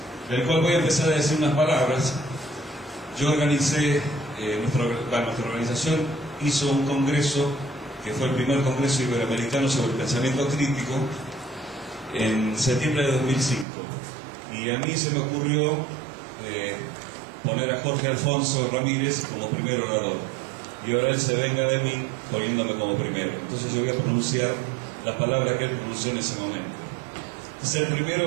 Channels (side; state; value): left; drops out; at 13.7 s